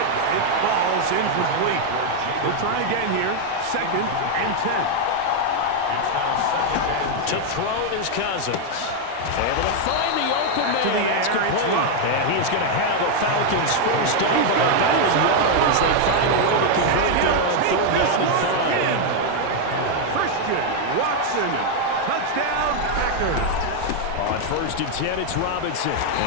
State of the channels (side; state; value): both; different; correlation 0.00